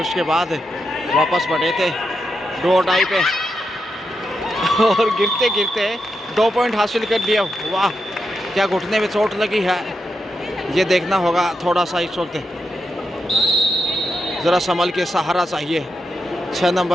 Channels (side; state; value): both; normal; correlation 0.86